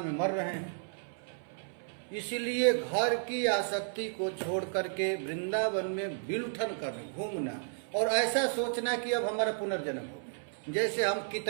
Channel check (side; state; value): left; silent; 56 dB below the other